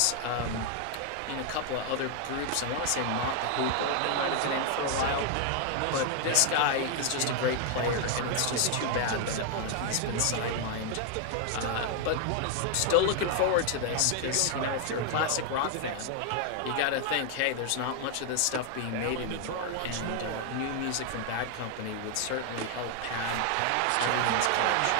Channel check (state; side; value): different; both; correlation 0.00